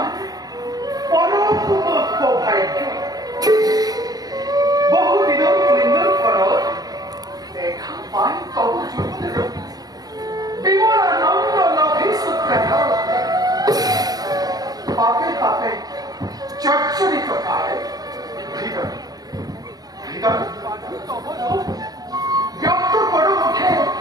পরম ভাগ্য বহুদিনের পুণ্যর ফলত দেখা পাই তব যুগের বিমলানন্দ নভি সূত্রায় পাপে পাপে চর্চরিত কালে হৃদয় হৃদয় ব্যক্ত করো মুখে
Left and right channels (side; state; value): left; late; 0.19 ms